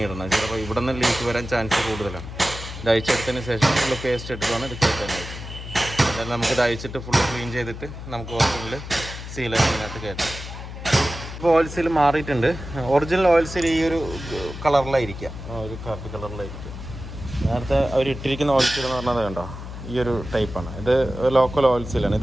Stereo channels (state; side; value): noise; left; hum, 10 dB below the sound